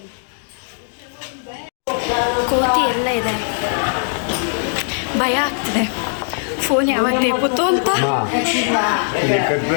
ಕೋತಿ ಎಲ್ಲ ಇದೆ, ಭಯ ಆಗ್ತಿದೆ. ಫೋನ್ ಯಾವಾಗ ನೇಪುತ್ತು ಅಂತ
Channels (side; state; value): right; silent; 57 dB below the other